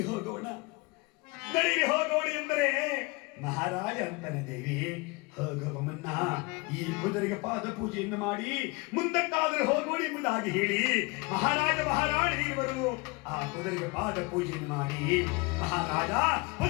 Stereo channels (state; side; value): quieter; right; 26.9 dB